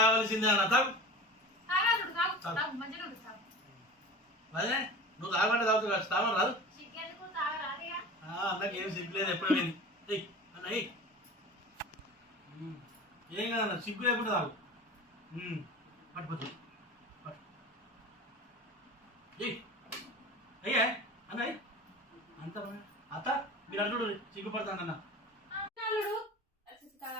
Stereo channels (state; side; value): normal; both; correlation 0.35